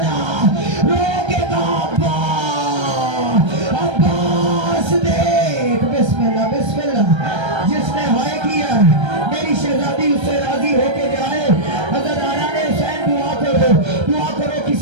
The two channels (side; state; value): left; late; 1.3 ms